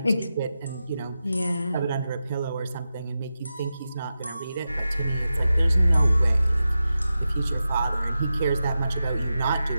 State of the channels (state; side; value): inverted; both; correlation -0.91